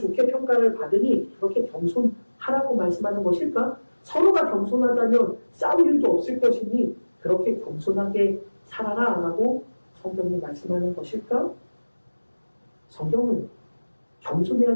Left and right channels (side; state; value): both; inverted; correlation -1.00